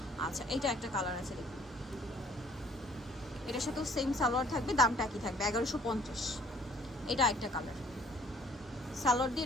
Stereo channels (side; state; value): both; normal; correlation 0.58